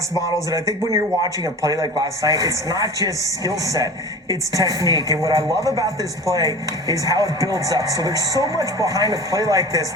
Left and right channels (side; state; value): both; normal; correlation 0.36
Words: models. And I think when you're watching a play like last night, it's not just skill set, it's technique. And what I love about this play is how it builds up. So there's so much behind a play like this.